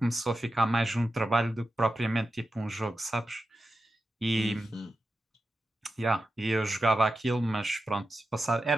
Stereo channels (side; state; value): both; normal; correlation 0.91